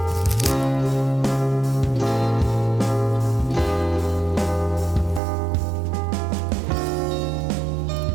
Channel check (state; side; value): drops out; left; at 5.2 s